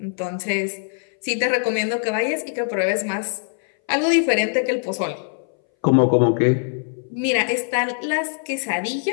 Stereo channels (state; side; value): silent; right; 61 dB below the other